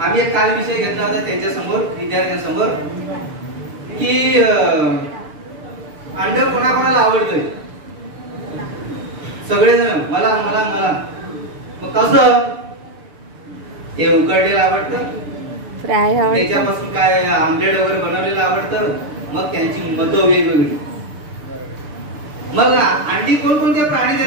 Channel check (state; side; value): late; left; 6.7 ms